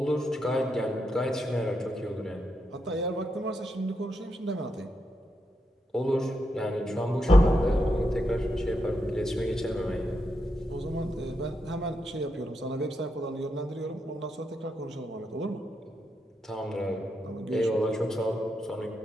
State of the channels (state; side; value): normal; both; correlation 0.83